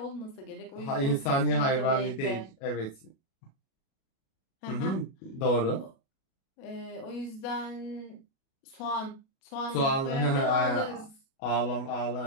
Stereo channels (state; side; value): late; right; 37 ms